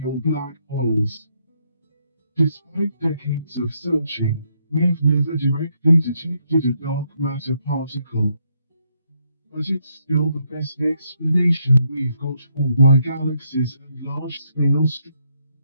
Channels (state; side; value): inverted; both; correlation -0.76